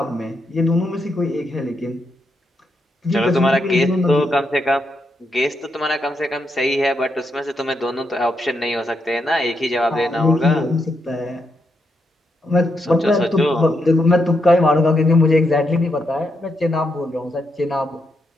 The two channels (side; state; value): both; normal; correlation 0.81